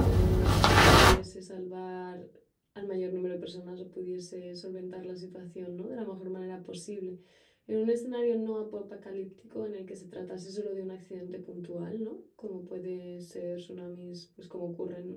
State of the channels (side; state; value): both; identical; correlation 1.00